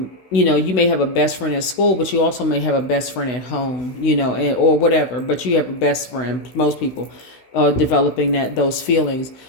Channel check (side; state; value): right; late; 16 ms